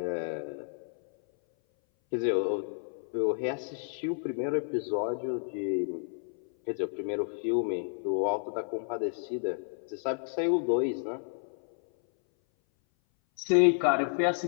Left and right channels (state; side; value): silent; right; 57 dB below the other